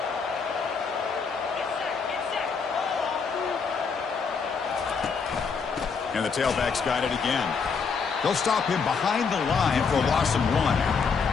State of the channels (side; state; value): right; quieter; 5.5 dB